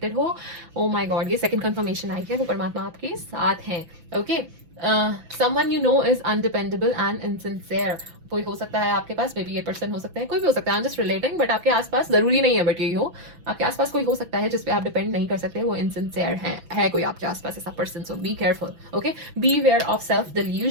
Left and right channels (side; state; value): left; late; 6.0 ms